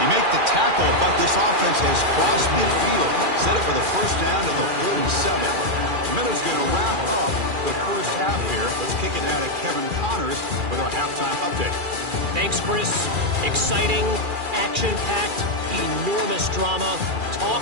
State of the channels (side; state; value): left; late; 2.4 ms